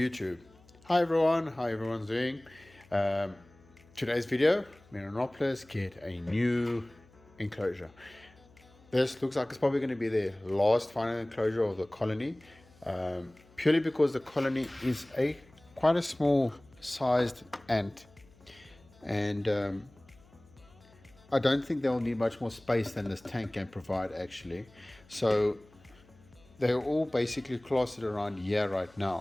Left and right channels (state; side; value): noise; left; hum, 27 dB below the sound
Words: Hi everyone, how everyone's doing? Um, Today's video, Meranoplus get a new enclosure. This looks like it's probably going to be the last final enclosure of the colony, purely because the colony is quite a small sized ant, and I don't think they'll need much more space than this tank can provide actually. So they're all basically clustered around here right